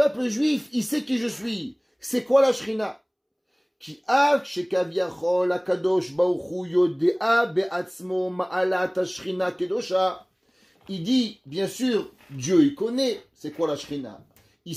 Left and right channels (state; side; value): identical; both; correlation 1.00